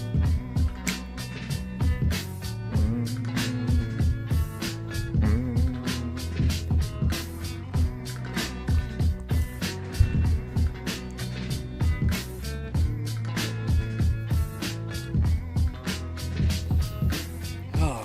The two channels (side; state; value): both; identical; correlation 1.00